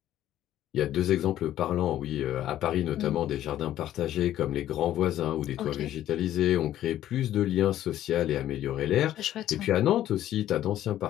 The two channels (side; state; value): right; quieter; 12.6 dB